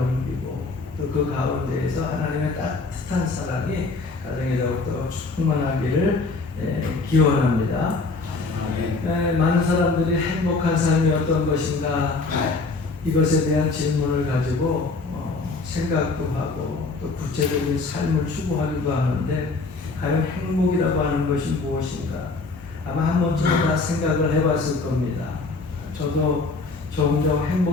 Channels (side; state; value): right; quieter; 3.8 dB